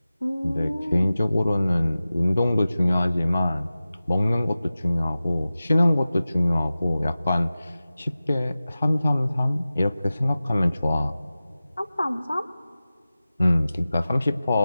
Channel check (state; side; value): inverted; both; correlation -0.96